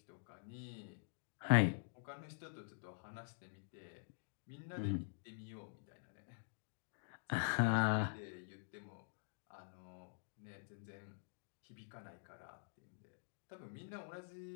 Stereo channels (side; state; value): right; silent; digital silence